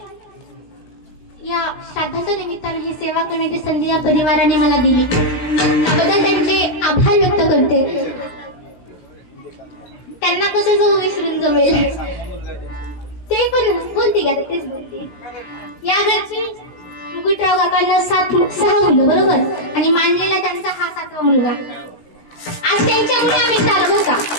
या श्राद्धाच्या निमित्तानं ही सेवा करण्याची संधी या परिवाराने मला दिली, त्याबद्दल त्यांचे आभार व्यक्त करते. त्यांना कसं जाऊ विसरून जमेल, ते पण बोलते का, तेच बोलते. या घरची मुकुटराव काकांना 6 मुलं बरोबर, आणि मांडलेला त्यांचा हा 7वा मुलगा. आज त्यांच्यामुळे आम्ही चालवू का,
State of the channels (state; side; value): late; right; 16 ms